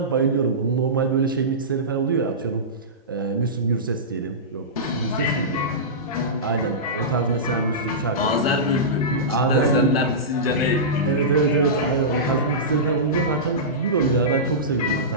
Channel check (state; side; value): normal; both; correlation -0.18